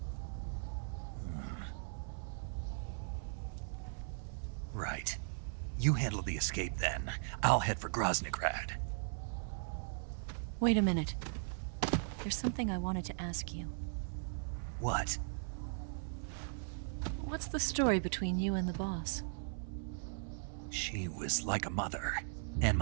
Right. You handle the escape then. I'll head for Groznygrad. Wait a minute. There's something I wanted to ask you. What? What's the story between you and the boss? She was like a mother, and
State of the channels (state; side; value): silent; left; 52 dB below the other